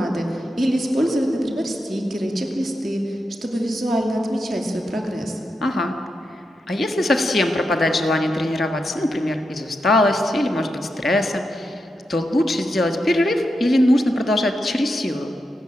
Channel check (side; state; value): both; normal; correlation 0.86